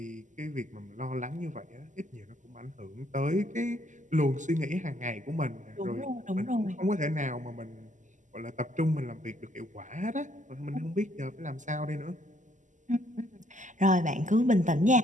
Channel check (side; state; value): left; late; 0.36 ms